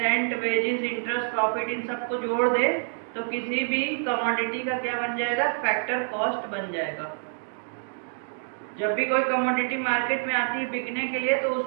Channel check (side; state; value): left; silent; digital silence